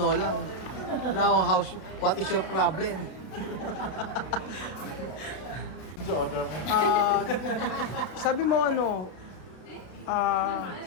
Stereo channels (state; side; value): late; right; 32 ms